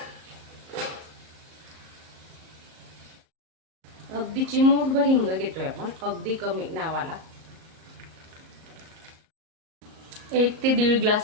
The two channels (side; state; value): left; late; 37 ms